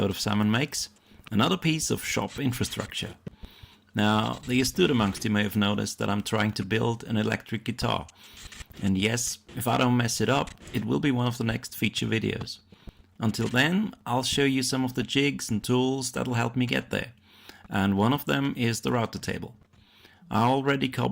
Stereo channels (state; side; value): identical; both; correlation 1.00